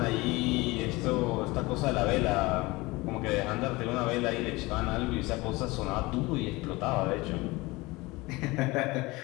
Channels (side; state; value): right; quieter; 22.3 dB